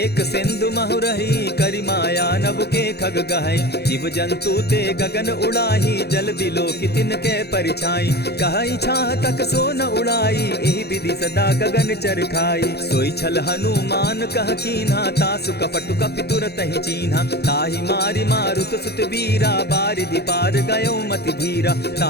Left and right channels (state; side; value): late; right; 0.47 ms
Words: सिंधु महु रही, करि माया नभ के खग गहई। जीव जंतु ते गगन उड़ाही, जल बिलो की तिनके परिछाई। कहई छाह तक सो न उड़ाई, एहि विधि सदा गगन चर खाई। सोई छल हनुमान कह कीन्हा, तासु कपटु कपि तुरत ही चीन्हा। ताहि मारि मारुत सुत वीरा, बारिधि पार गयो मति धीरा।